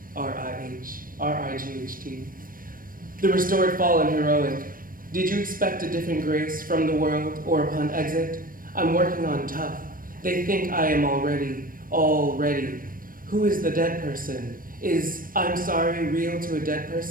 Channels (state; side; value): late; left; 0.41 ms